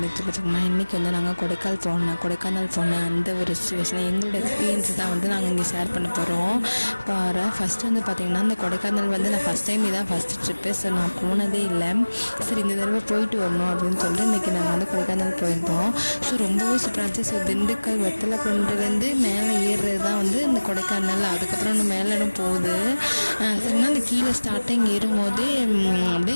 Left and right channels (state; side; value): inverted; both; correlation -1.00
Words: சொல்லி பார்த்தீங்கன்னா, இன்றைக்கி வந்து நாங்கள் கொடைக்கானல் போன அந்த ஒரு சிச்சுவேஷன் எங்களோட எக்ஸ்பீரியன்ஸ் தான் வந்து நாங்கள் இங்கே ஷேர் பண்ண போகிறோம். ஃபஸ்ட்டு வந்து பார்த்திங்கன்னா, இந்த கொடைக்கானல் வந்து நான் ஃபஸ்ட் டைம் இதான் ஃபஸ்ட்டு ட்ரிப்பு. ஸோ நான் போனதே இல்லை. சரி இந்த தடவை போயிட்டு வரணும் அப்படின்னு சொல்லிட்டு இன்றைக்கி நாங்கள் வந்து கொடைக்கானல் போயிருந்தோம். ஸோ ரொம்பவே சூப்பராக இருந்துச்சு. ஸோ திண்டுக்கல் வெத்தலை கொண்டு வந்து மேலே ஏறுறது தான் வந்து இந்த கொடைக்கானல். அதுக்கப்புறம் இன்னும் மேலும் போகுது. சரினா இந்த கீழே ஸ்டார்டிங் ஏறும்போதே